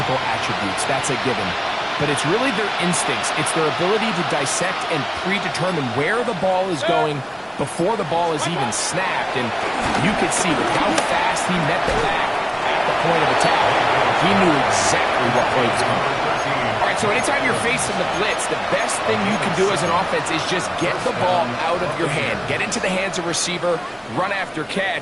attributes. That's a given. But it's really their instincts. It's their ability to dissect and predetermine where the ball is going before the ball is even snapped. And you could see with how fast he met the back at the point of attack, he knew exactly what play was coming. All right, so anytime you're facing the blitz, the best thing you can do as an offense is just get the ball out of your hand. Get into the hands of receiver, run after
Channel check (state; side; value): identical; both; correlation 1.00